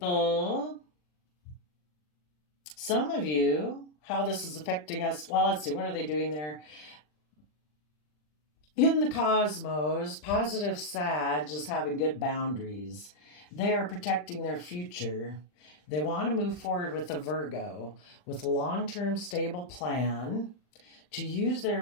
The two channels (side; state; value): right; late; 40 ms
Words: some of you, how this is affecting us. Well, let's see, what are they doing there? In the cosmos, positive Sag is having good boundaries. They are protecting their future. They want to move forward with a Virgo, with a long-term stable plan to use